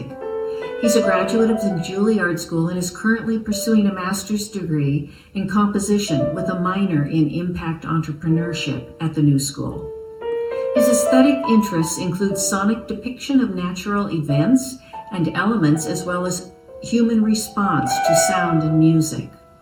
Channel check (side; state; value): both; identical; correlation 1.00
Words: He's a graduate of the Juilliard School and is currently pursuing a master's degree in composition with a minor in impact entrepreneurship at the New School. His aesthetic interests include sonic depiction of natural events and elements, as well as human response to sound and music.